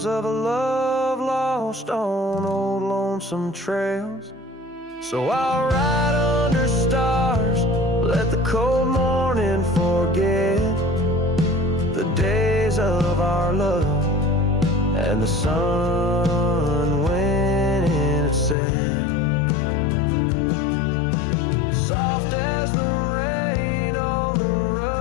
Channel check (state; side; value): drops out; right; at 18.6 s